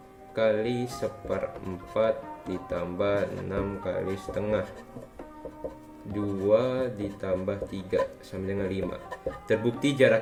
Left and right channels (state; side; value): identical; both; correlation 1.00